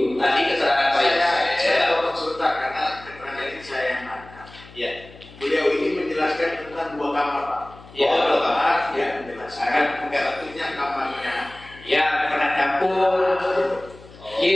Tadi keterangan Pak Yosef. Saya potong sebentar karena keterangan ini saya yang nangkap. Ya. Beliau ini menjelaskan tentang 2 kamar, Pak. Ya, 2 2 kamar, ya menjelaskan bentuknya kamarnya. Ya, pernah campur.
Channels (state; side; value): noise; left; hum, 21 dB below the sound